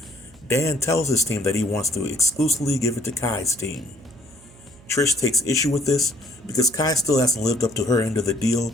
Dan tells his team that he wants to exclusively give it to Kai's team. Trish takes issue with this because Kai still hasn't lived up to her end of the deal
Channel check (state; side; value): noise; right; hum, 24 dB below the sound